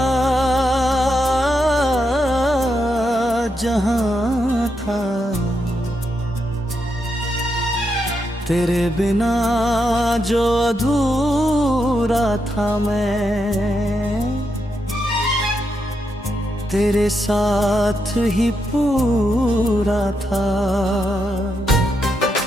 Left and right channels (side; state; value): both; normal; correlation 0.83